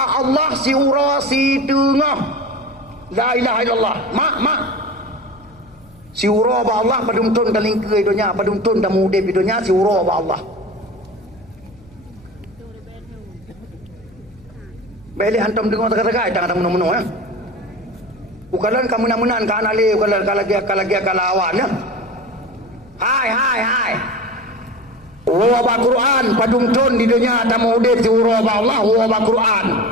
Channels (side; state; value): left; noise; hum, 27 dB below the sound